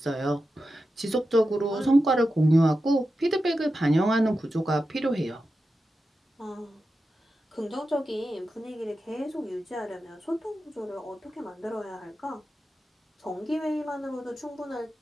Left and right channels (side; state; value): both; normal; correlation 0.91